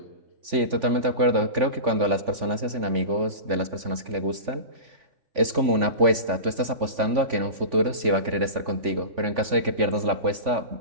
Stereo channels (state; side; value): late; left; 3.5 ms